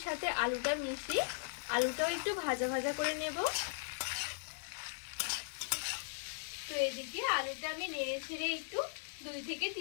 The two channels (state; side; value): silent; right; digital silence